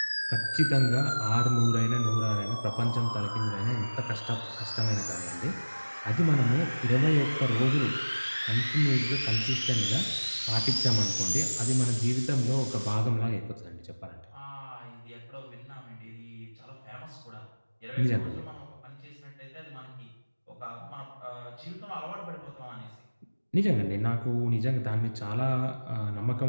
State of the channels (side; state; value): both; inverted; correlation -1.00